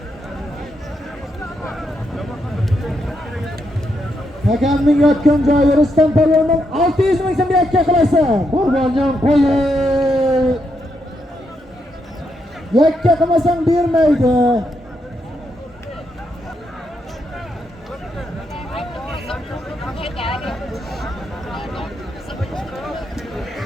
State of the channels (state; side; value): normal; both; correlation 0.80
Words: Hakamning yotgan joyi Rustam polvondan 600 ming so'm yakka qilasan. Qurbonjon qo'yi. Yakka qilmasang bermaydi.